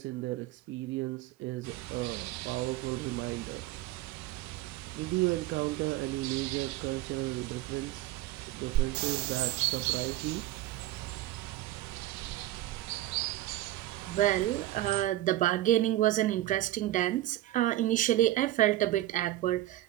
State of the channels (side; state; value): left; quieter; 15.1 dB